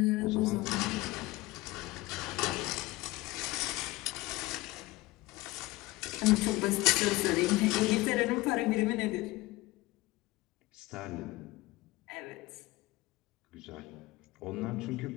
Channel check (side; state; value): right; quieter; 20.0 dB